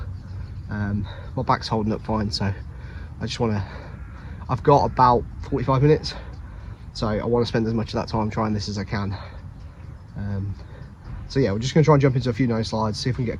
My back's holding up fine, so I just want to, I've got about 45 minutes, so I want to spend as much of that time trying this as I can. So yeah, we're just going to try and jump into a few nose slides, see if we can get a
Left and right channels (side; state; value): both; identical; correlation 1.00